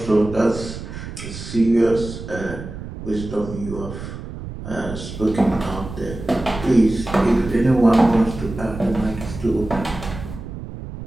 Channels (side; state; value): right; noise; rumble, 10 dB below the sound